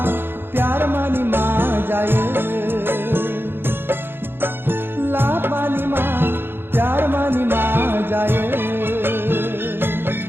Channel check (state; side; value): late; left; 0.10 ms